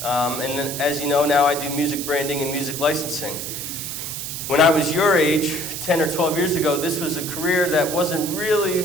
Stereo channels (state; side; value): noise; right; hiss, 6 dB below the sound